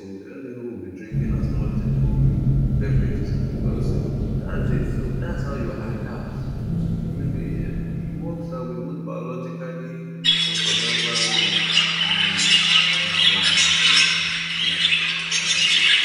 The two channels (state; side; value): identical; both; correlation 1.00